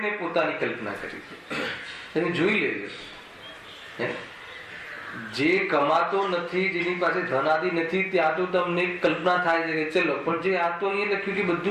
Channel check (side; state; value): both; identical; correlation 1.00